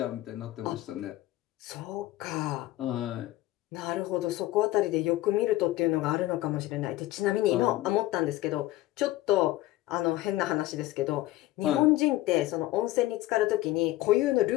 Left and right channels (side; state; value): right; quieter; 16.5 dB